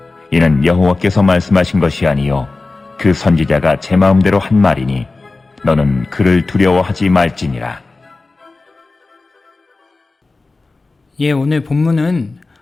이는 여호와께서 말씀하신 것이 아니요 그 선지자가 제 마음대로 한 말이니 너는 그를 두려워하지 말지니라. 오늘 본문은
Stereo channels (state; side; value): quieter; right; 3.5 dB